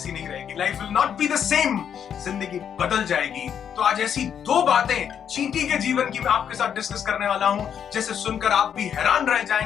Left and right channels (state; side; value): quieter; right; 8.4 dB